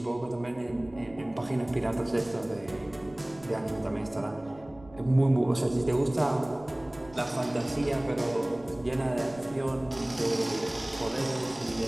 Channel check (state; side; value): noise; right; rumble, 23 dB below the sound